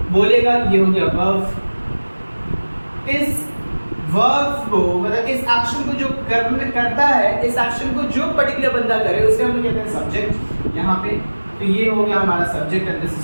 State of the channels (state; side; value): inverted; both; correlation -1.00